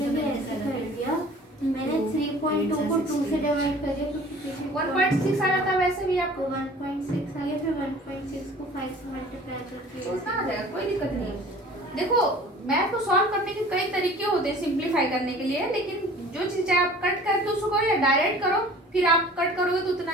ऐसे कर दिया मैंने 3.2 को 2 से डिवाइड कर दिया क्योंकि 1.6 आ जाता वैसे भी आपको आपको 1.6 आ गया फिर 1.6 को 5 से मल्टीप्लाई करके तो उतना आ जाएगा कोई दिक्कत नहीं है देखो मैथ को सॉल्व करने के कई तरीके होते हैं सिंप्लीफाई करने के लिए लेकिन जो चीज चाहे आप कट करके उसको करो या डायरेक्ट करो फिर आप कट करोगे तो उतना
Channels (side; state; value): both; normal; correlation 0.47